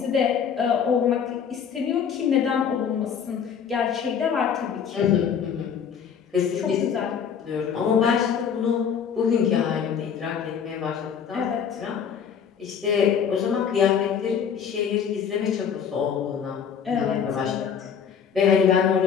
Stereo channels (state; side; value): quieter; right; 7.4 dB